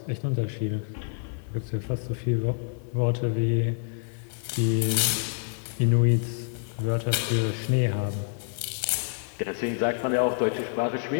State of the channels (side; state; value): right; silent; 56 dB below the other